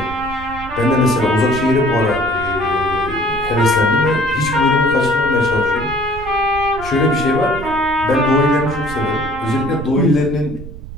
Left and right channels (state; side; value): noise; right; rumble, 13 dB below the sound